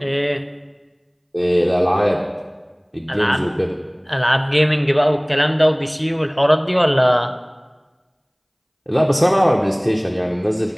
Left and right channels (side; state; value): both; identical; correlation 1.00